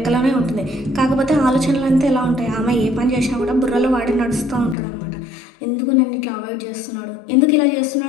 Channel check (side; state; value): right; drops out; at 4.8 s